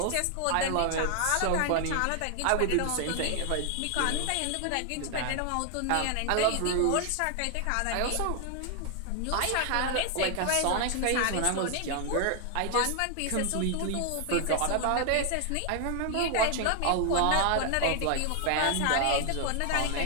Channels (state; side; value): different; both; correlation 0.00